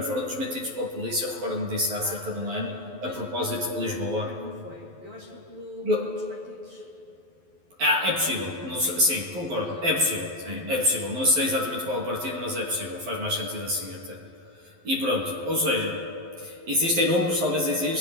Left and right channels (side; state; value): left; late; 11 ms